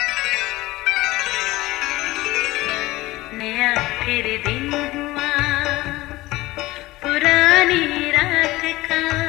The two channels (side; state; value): right; quieter; 18.9 dB